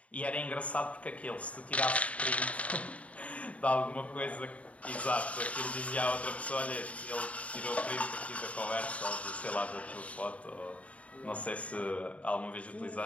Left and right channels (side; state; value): right; late; 0.066 ms